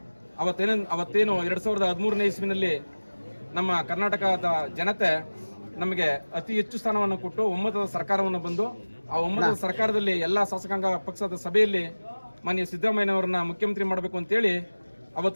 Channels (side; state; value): both; inverted; correlation -1.00